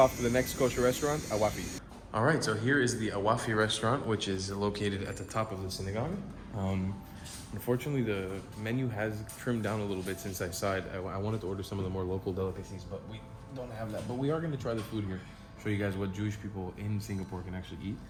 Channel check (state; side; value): identical; both; correlation 1.00